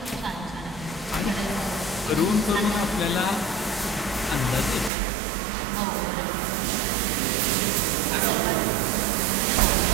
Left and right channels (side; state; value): left; drops out; at 4.9 s